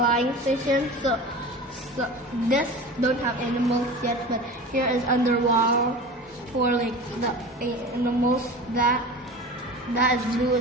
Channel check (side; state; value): both; normal; correlation 0.34